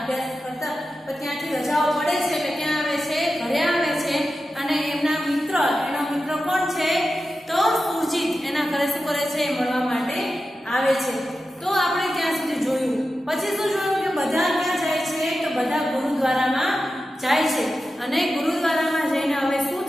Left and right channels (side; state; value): both; normal; correlation 0.92